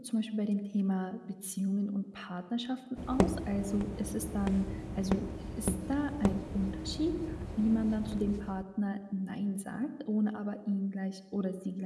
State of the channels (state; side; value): identical; both; correlation 1.00